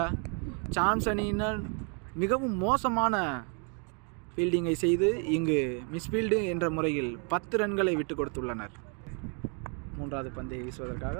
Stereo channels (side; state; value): left; quieter; 38.1 dB